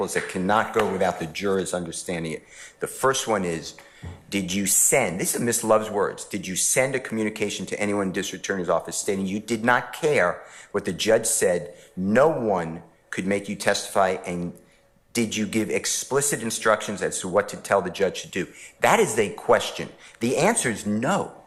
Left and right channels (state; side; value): identical; both; correlation 1.00